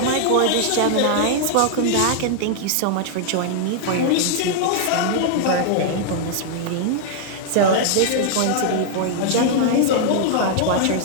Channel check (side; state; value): both; different; correlation -0.01